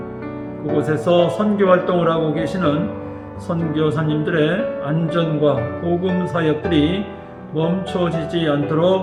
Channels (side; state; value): both; identical; correlation 1.00